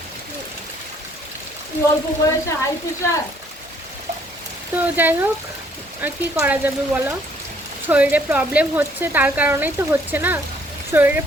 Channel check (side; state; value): both; normal; correlation 0.63